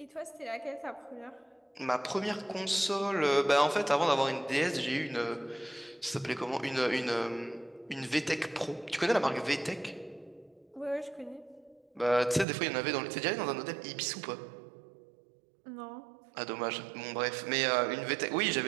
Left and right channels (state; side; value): drops out; left; at 12.5 s